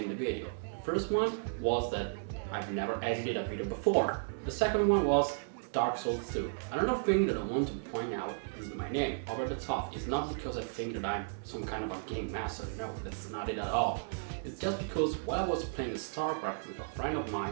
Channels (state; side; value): silent; left; digital silence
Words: the video. The first one was that I've never edited a video before. The second one was Dark Souls 2. Another thing that I want to point out is my name, Over the Top. It's not because I think that I'm some kind of a game master, no, that's not it at all. It's just because while I was playing StarCraft with a friend of